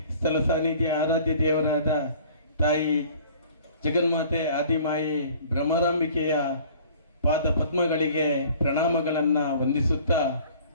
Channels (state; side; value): inverted; both; correlation -0.50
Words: ಸ್ಥಳ ಸಾನ್ನಿಧ್ಯ ಆರಾಧ್ಯ ದೇವರಾದ ತಾಯಿ ಜಗನ್ಮಾತೆ ಆದಿಮಾಯಿ ಭ್ರಮರಾಂಬಿಕೆಯ ಪಾದ ಪದ್ಮಗಳಿಗೆ ಪ್ರಣಾಮಗಳನ್ನು ವಂದಿಸುತ್ತಾ